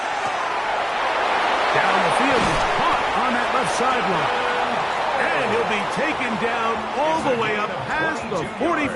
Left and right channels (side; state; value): both; identical; correlation 1.00